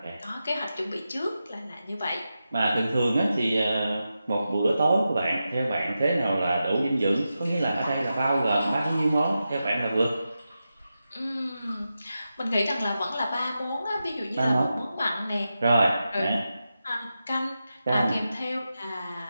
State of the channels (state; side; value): inverted; both; correlation -0.90